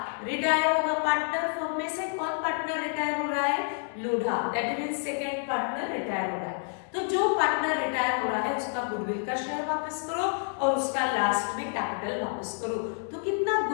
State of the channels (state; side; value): silent; right; 58 dB below the other